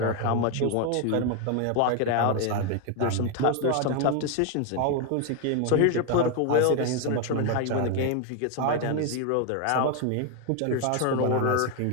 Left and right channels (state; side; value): different; both; correlation 0.01